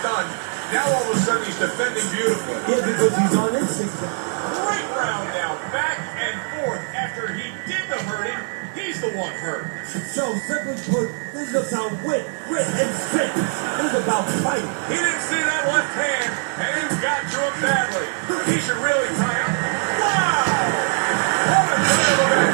Now all of a sudden he's defending beautifully. Yeah, because he's on instinct. Great round now, back and forth. After he did the hurting, he's the one hurt. So, simply put, this is about wit, grit, and spit. This is about fighting. He didn't see that left hand, and it got to him badly. He should really tie up. Wow! What a turn of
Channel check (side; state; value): left; silent; 64 dB below the other